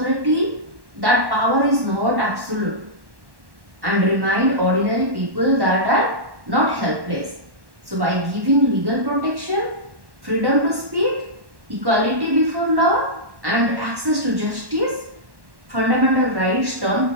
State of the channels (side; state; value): left; late; 1.1 ms